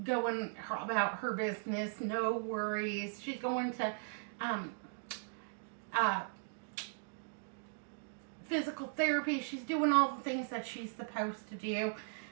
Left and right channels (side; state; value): left; silent; digital silence